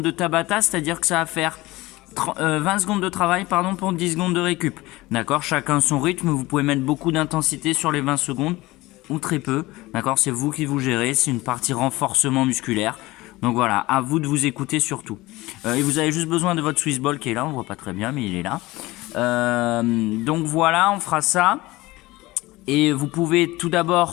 de Tabata, c'est-à-dire que ça va faire 20 secondes de travail pour 10 secondes de récup. D'accord, chacun son rythme, vous pouvez mettre beaucoup d'intensité sur les 20 secondes ou très peu. D'accord, c'est vous qui vous gérez, c'est une partie renforcement musculaire. Donc voilà, à vous de vous écouter surtout. Et vous avez juste besoin de votre Swissball qui est là, on voit pas très bien mais il est là. Donc voilà, on fera ça. Et vous pouvez tout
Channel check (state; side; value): quieter; right; 19.8 dB